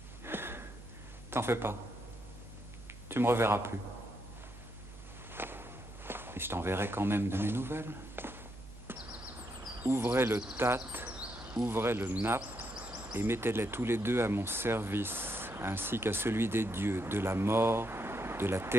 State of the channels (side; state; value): both; normal; correlation 0.79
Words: T'en fais pas. Tu me reverras plus. Et je t'enverrai quand même de mes nouvelles. Ouvrez le tat, ouvrez le nappe, et mettez-les tous les deux à mon service, ainsi qu'à celui des dieux, de la mort, de la